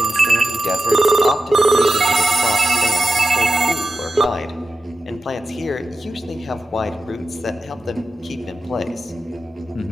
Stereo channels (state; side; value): normal; both; correlation 0.90